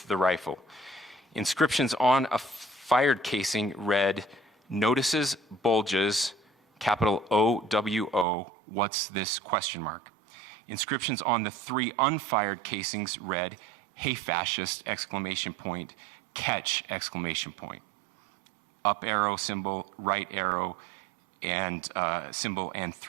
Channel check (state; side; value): drops out; left; at 8.2 s